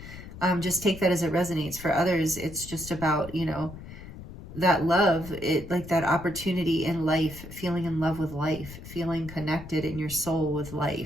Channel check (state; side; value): noise; left; rumble, 14 dB below the sound